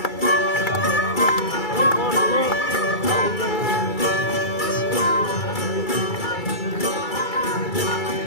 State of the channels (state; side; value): late; right; 2.3 ms